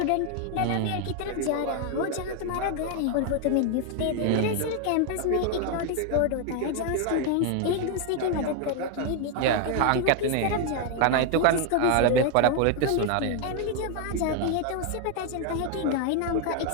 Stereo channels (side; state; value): both; different; correlation 0.00